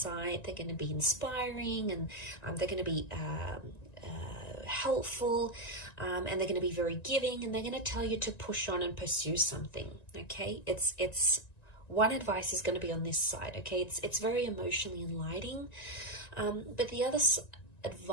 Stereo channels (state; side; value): late; right; 1.9 ms